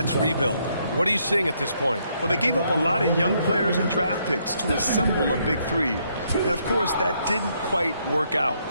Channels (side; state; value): both; inverted; correlation -0.73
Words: rebuild, what are you seeing at this point? Well, they gave up a lot of young players and draft picks to assemble a big three. And, of course, that didn't quite work out.